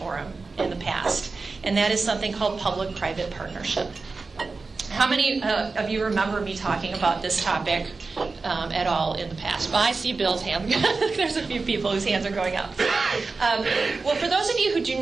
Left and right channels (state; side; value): quieter; left; 4.1 dB